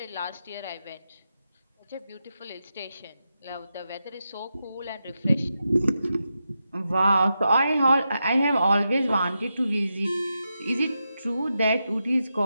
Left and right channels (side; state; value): both; inverted; correlation -0.88